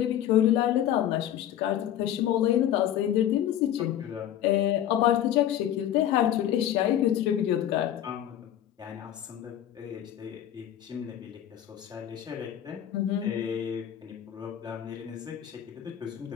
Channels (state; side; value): quieter; right; 11.1 dB